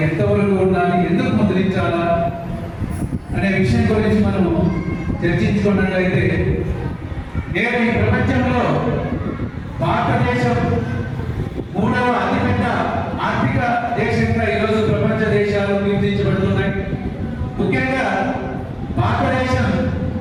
ఎంతవరకు ఉండాలి, ఎందుకు ముద్రించాలా అనే విషయం గురించి మనం చర్చించుకున్నట్లయితే నేడు ఈ ప్రపంచంలో భారతదేశం 3వ అతిపెద్ద ఆర్థిక దేశంగా ఈరోజు ప్రపంచ దేశాలు గుర్తించబడుతున్నాయి. ముఖ్యంగా భారతదేశం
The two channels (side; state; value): both; identical; correlation 1.00